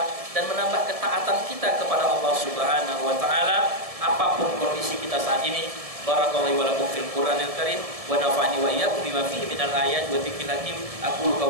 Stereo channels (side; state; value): left; late; 1.7 ms